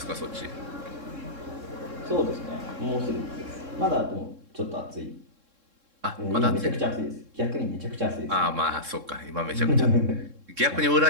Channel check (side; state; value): left; late; 3.7 ms